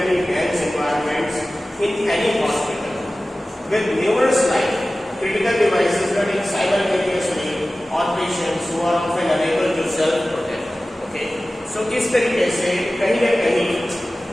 dense environments in any hospital, with numerous live critical devices running simultaneously on patients who are often unable to self-protect. Okay, so इस तरीके से कहीं न कहीं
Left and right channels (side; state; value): both; normal; correlation 0.96